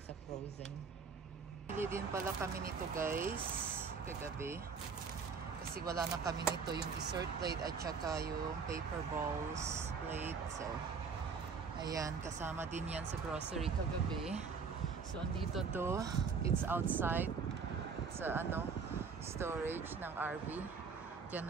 sa frozen. Bili din pala kami nito guys, kagabi. Kasi wala na kami nito, yung dessert plate at saka yung paper bowls plate. So, ayan, kasama din yan sa grocery kagabi. So, andito to. It's outside sa storage ng RV.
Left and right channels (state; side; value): quieter; left; 5.5 dB